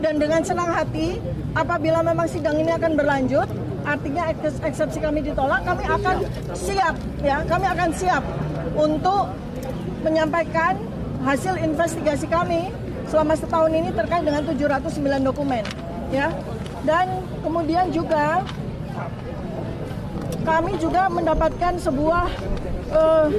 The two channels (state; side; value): identical; both; correlation 1.00